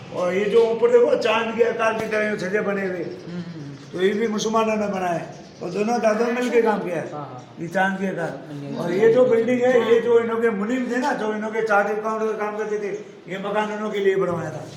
और ये जो ऊपर देखो चांद के आकार की तरह छजे बने हुए, तो ये भी मुसलमानों ने बनाए, और दोनों दादों ने मिलकर काम किया है ये चांद के आकार। और ये जो बिल्डिंग है, ये जो इन्हों के मुनीम थे ना, जो इन्हों के चार्ट अकाउंट का काम करते थे, ये मकान उन्हों के लिए बनवाया था।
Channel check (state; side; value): identical; both; correlation 1.00